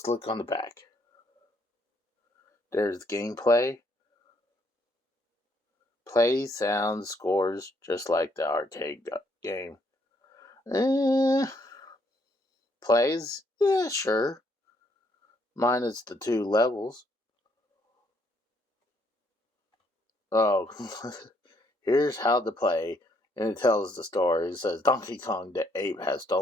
look on the back. There's gameplay. Plays, sounds, scores, just like the arcade game. Plays? Yeah, sure. Minus the 2 levels. Oh, here's how to play. And it tells the story. It says, Donkey Kong the ape has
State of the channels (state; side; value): normal; both; correlation 0.70